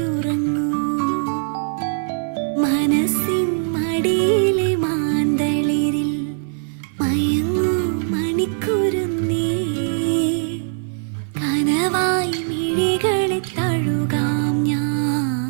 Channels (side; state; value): left; silent; 58 dB below the other